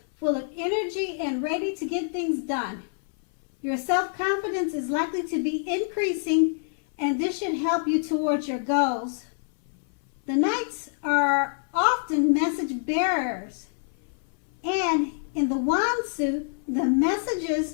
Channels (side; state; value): right; silent; 60 dB below the other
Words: full of energy, and ready to get things done. Your self-confidence is likely to be increasing, and this should help you towards your goals. The Knights are often message bearers, and in the Wand suit, the